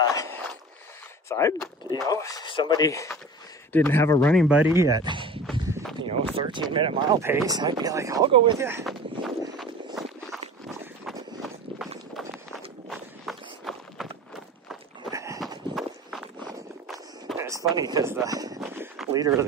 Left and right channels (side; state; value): both; normal; correlation 0.37